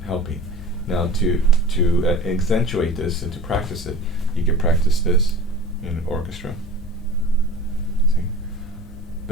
helping. Now to accentuate this and to practice it, you can practice this in an orchestra. See?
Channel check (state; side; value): normal; both; correlation 0.40